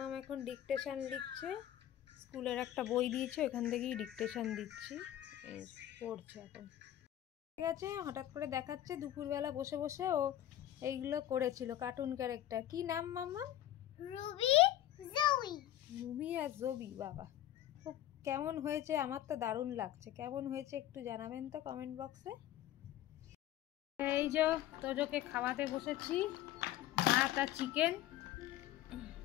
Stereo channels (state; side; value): quieter; right; 12.8 dB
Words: এখন ডিকটেশন লিখছে, স্কুলের একটা বই দিয়েছে, এখান থেকেই ডিকটেশন দিচ্ছি, পড়ছে এখন। ঠিক আছে, হঠাৎ করে দেখাচ্ছে দুপুরবেলা বসে বসে ও এইগুলো করেছিল কার্টুন ক্যারেক্টার। কি নাম মাম্মাম? রুবি জবি। রুবি আর জবি, বাবা খুব কেমন হয়েছে? আমার তো দারুণ লাগছে। কেমন হয়েছে একটু জানাবেন তো কমেন্ট বক্সে। এই যে তোজোকে খাওয়াতে বসেছি, ভাত আর চিকেন